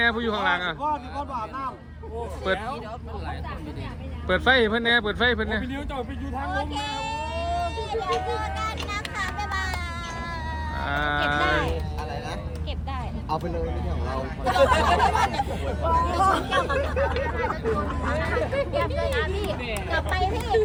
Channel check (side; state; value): both; identical; correlation 1.00